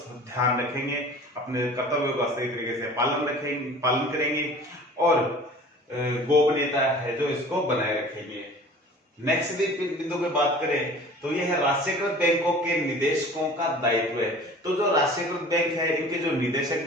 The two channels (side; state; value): both; normal; correlation 0.44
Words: ध्यान रखेंगे, अपने कर्तव्यों का सही तरीके से पालन करेंगे और गोपनीयता है जो इसको बनाए रखेंगे। नेक्स्ट बिंदु पे बात करें तो यह है राष्ट्रीयकृत बैंकों के निदेशकों का दायित्व है। तो जो राष्ट्रीयकृत बैंक है इनके जो निदेशक